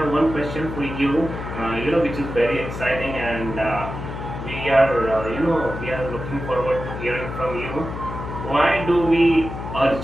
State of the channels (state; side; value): noise; left; hum, 8 dB below the sound